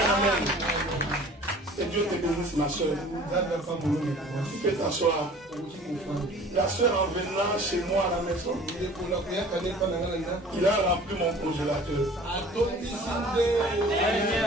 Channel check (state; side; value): normal; both; correlation 0.47